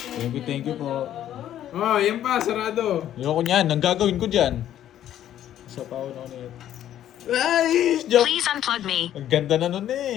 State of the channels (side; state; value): right; quieter; 11.5 dB